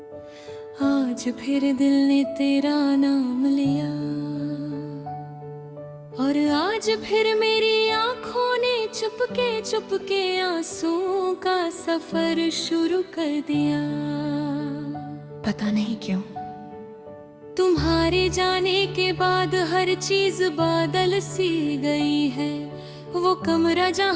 आज फिर दिल ने तेरा नाम लिया, और आज फिर मेरी आंखों ने चुपके चुपके आंसुओं का सफर शुरू कर दिया। पता नहीं क्यों तुम्हारे जाने के बाद हर चीज बादल सी गई है। वो कमरा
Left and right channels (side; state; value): both; identical; correlation 1.00